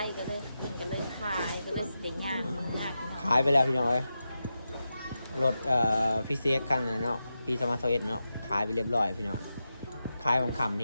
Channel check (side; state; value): both; inverted; correlation -0.90